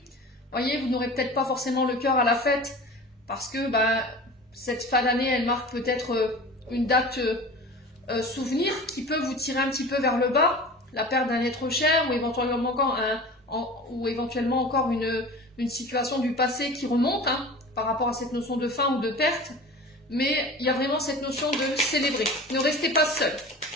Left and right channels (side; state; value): both; normal; correlation 0.37